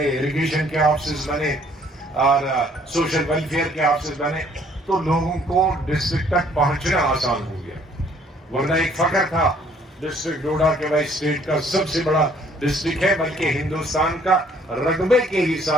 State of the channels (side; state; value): both; normal; correlation 0.61